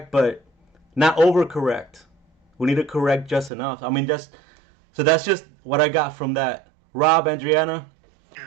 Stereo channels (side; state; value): left; drops out; at 3.5 s